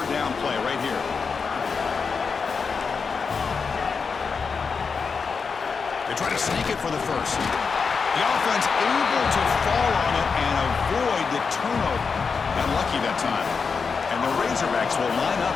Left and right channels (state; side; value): quieter; right; 5.3 dB